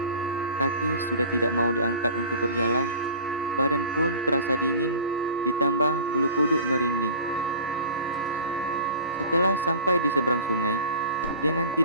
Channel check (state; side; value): inverted; both; correlation -0.40